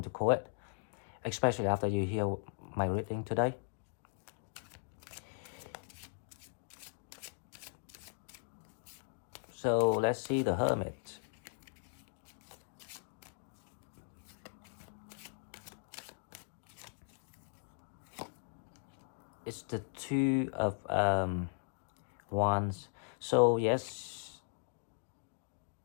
to call it, especially after you hear my reading today. So let's see the Hermit. It's the Two of Wands. So yes,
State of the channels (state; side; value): silent; right; digital silence